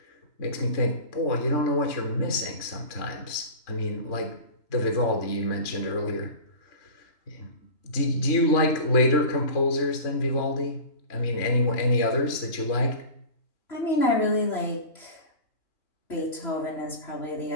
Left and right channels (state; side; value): late; right; 3.5 ms